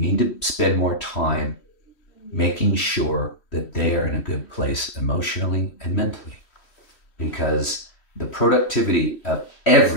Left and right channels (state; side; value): late; right; 3.1 ms